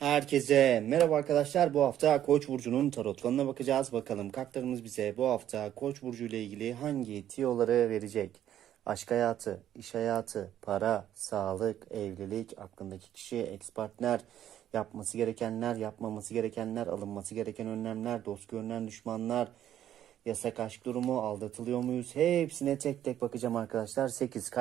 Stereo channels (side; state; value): left; quieter; 11.2 dB